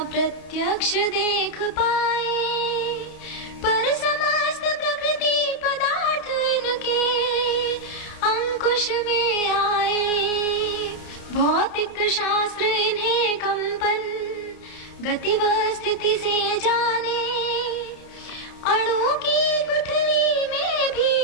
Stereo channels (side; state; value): right; late; 31 ms